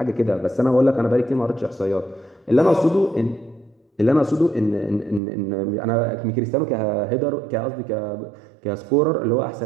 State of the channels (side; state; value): left; drops out; at 5.2 s